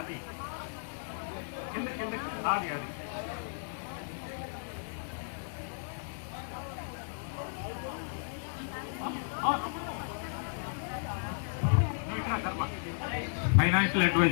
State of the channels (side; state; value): right; silent; 55 dB below the other